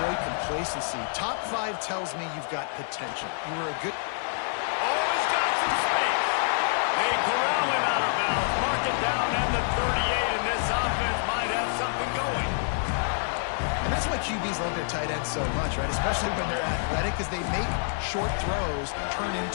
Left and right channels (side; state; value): right; silent; digital silence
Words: complacency. Top 5 tells me you've got potential. You were a good... Oh, he's got some space. They corral him out of bounds. Mark it down at the 38, and this offense might have something going. And that's why QBs love their tight ends so much, right? Especially when they're athletic, because they make short throws turn